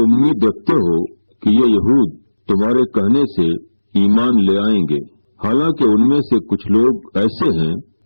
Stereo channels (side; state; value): both; inverted; correlation -1.00